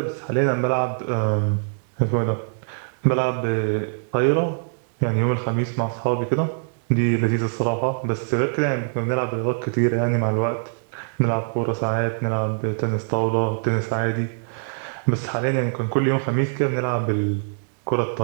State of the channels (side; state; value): left; silent; digital silence